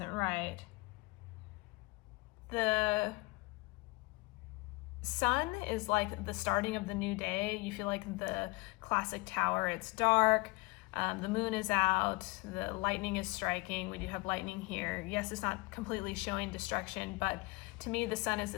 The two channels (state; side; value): quieter; right; 25.0 dB